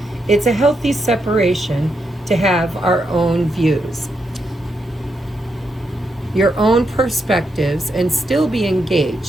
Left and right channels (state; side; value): normal; both; correlation 0.82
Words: It's a healthy separation to have our own views, your own perspectives, and still be